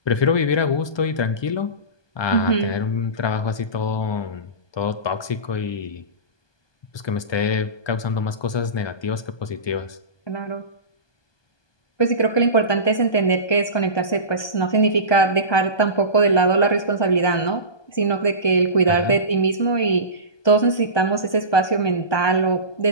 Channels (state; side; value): late; right; 1.2 ms